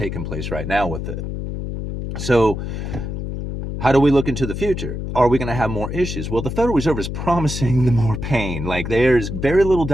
place right now with it. So how do we look into the future? Are we going to have more issues? Well, the Federal Reserve is promising the more pain. Like there's very little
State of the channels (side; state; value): left; noise; hum, 5 dB below the sound